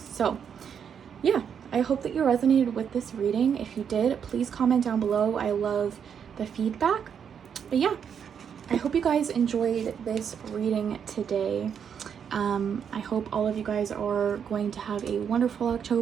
So yeah, I hope that you resonated with this reading. If you did, please comment down below. I love the feedback. But yeah, I hope you guys enjoyed this reading today. I hope all of you guys are going to have a wonderful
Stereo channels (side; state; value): left; quieter; 7.6 dB